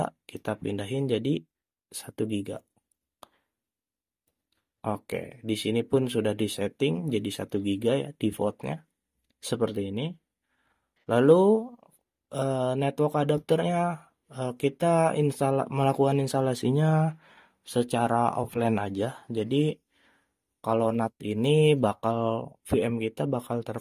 kita pindahin jadi 1 GB. Oke, di sini pun sudah disetting jadi 1 GB ya defaultnya. Seperti ini. Lalu network adapternya kita melakukan instalasinya secara offline aja. Jadi kalau NAT ini VM kita bakal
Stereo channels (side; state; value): both; identical; correlation 1.00